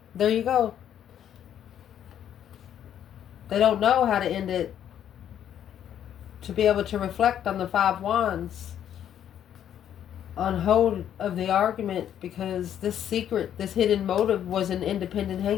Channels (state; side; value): quieter; right; 10.0 dB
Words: There you go. They don't know how to end it. To be able to reflect on the 5 wands. On hold of the argument, because this secret, this hidden motive was an independent